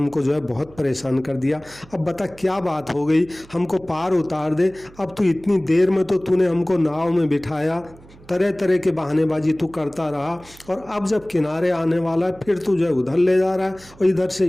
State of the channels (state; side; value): noise; right; hum, 23 dB below the sound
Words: जो है बहुत परेशान कर दिया, अब बता क्या बात हो गई, हमको पार उतार दे। अब तू इतनी देर में तो तूने हमको नाव में बिठाया, तरह तरह के बहानेबाजी तू करता रहा, और अब जब किनारे आने वाला है फिर तू जो है उधर ले जा रहा है और इधर से